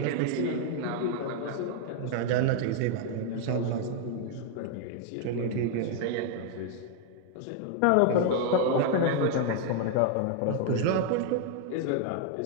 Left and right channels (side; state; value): both; different; correlation 0.00